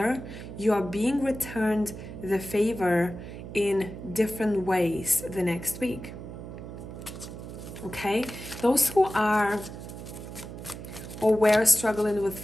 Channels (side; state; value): right; noise; hum, 11 dB below the sound